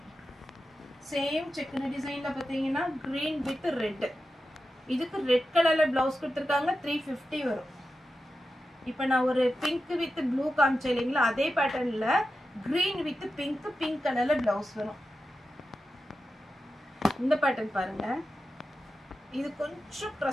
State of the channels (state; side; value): normal; both; correlation 0.91